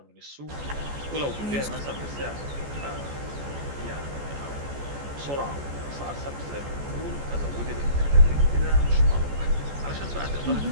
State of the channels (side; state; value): left; late; 14 ms